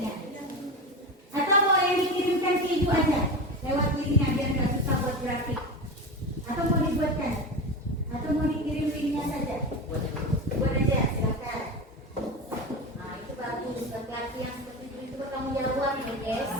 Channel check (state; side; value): normal; both; correlation 0.23